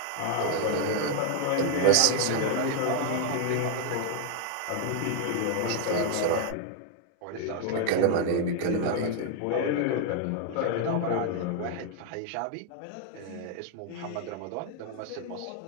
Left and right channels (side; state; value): both; different; correlation 0.00